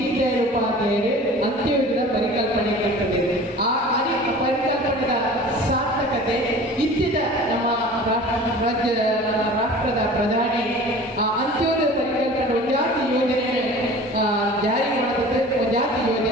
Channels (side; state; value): both; normal; correlation 0.42